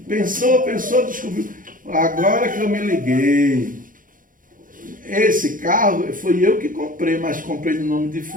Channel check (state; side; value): late; left; 0.39 ms